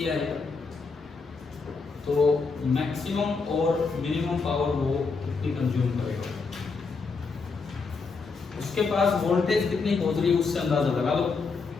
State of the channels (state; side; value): quieter; right; 4.5 dB